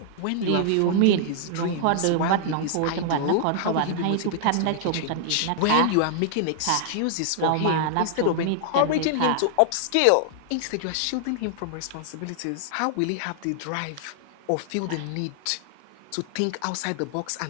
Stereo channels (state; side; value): different; both; correlation -0.01